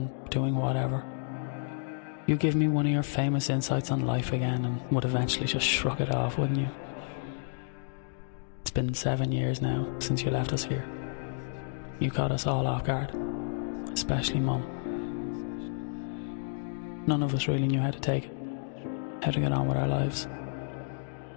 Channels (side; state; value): right; silent; digital silence